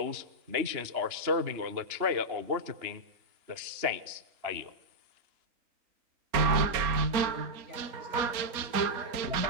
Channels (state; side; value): late; left; 4.2 ms